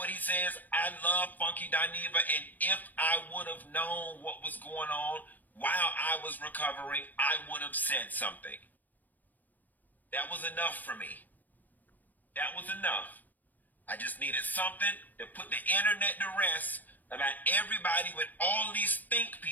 he says, I love Funky Dineva, and if I would have known what was going on while I was recovering, I would have said something. That was enough for me. That was enough. I just needed something to put the internet to rest about everybody with all these think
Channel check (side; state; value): right; late; 0.084 ms